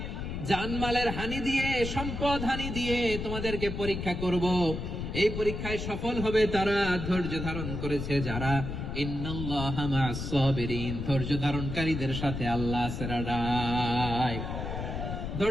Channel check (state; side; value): noise; left; rumble, 5 dB below the sound